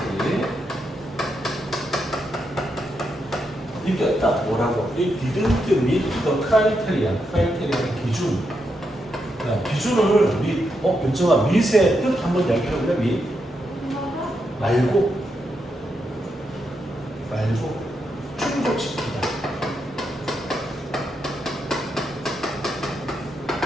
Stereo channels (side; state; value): both; normal; correlation 0.83